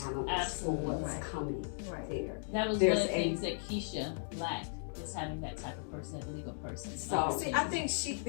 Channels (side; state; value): right; silent; digital silence